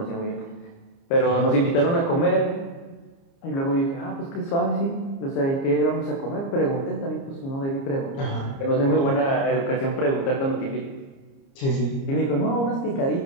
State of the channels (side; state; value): right; late; 29 ms